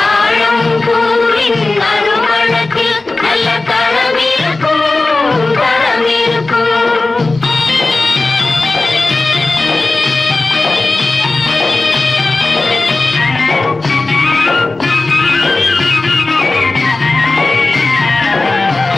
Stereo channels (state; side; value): quieter; right; 3.3 dB